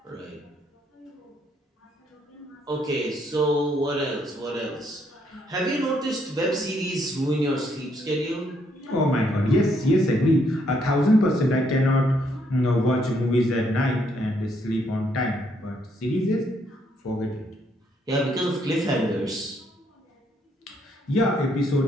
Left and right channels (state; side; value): normal; both; correlation 0.72